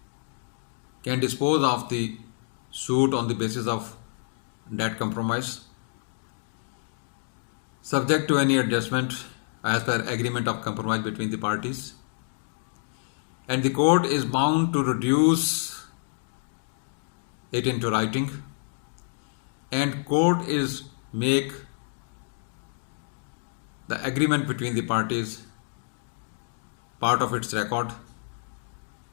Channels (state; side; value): silent; right; digital silence